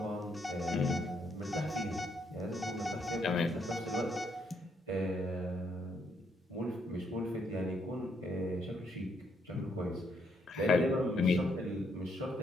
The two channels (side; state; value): both; normal; correlation 0.74